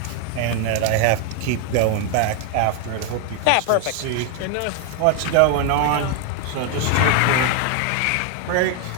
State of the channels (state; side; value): different; both; correlation 0.01